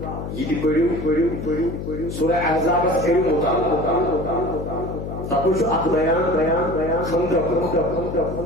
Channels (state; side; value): noise; left; hum, 7 dB below the sound